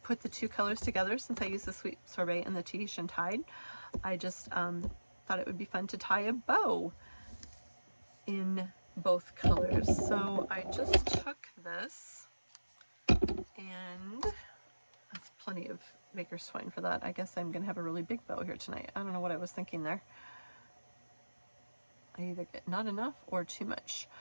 put the two colors together. Since I used the Sweet Sorbet and the Tahitian Tide, I just thought it would be fun to tie a bow in both colors. So I just took this, and that's plenty of Baker's Twine for that. I guess I'm gonna have a really big bow here tonight. I don't know what I was thinking there. I either get not enough or too much,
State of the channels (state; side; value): inverted; both; correlation -1.00